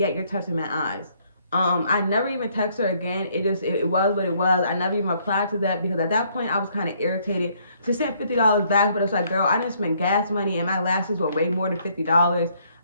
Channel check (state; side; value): inverted; both; correlation -0.67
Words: you're touching my eyes. I never even text her again. It was what it was. I never even replied to that because at that point I was kind of irritated. She sent $50 back, but it's like, girl, I didn't spend gas money and my lashes were way more than $50.